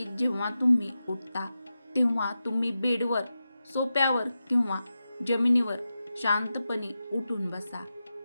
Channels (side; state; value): both; inverted; correlation -0.91